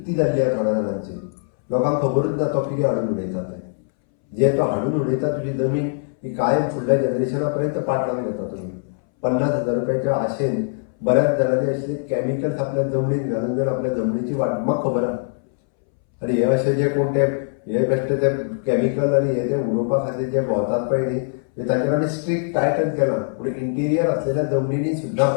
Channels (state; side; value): silent; right; 63 dB below the other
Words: जाल्ली आहा थोड्या जाणांची. लोकांक खबरूच ना तो कितें हाडून उडयता ते. जे तो हाडून उडयता तुजी जमीन ही कायम फुडल्या जनरेशना पर्यंत पाट लावन घेता तुम्ही. 50,000 रुपयाच्या आशेन बऱ्याच जाणांनी असले केमिकल्स आपल्या जमनीत घालून जर आपल्या जमनीची वाट म्हाका खबर आहा. आनी हे अशे जे कोण ते हे बेश्टे ते केमिकल आनी हे जे उडोवपा खातीर जे भोंवतात पळय न्ही ताचेर आमी स्ट्रिक्ट टायटन केला. पूण इंटिरियर असलेल्या जमनीनी सुद्दां